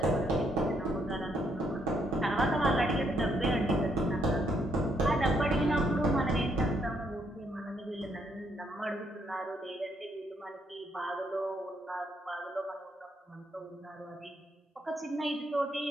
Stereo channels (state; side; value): normal; both; correlation 0.74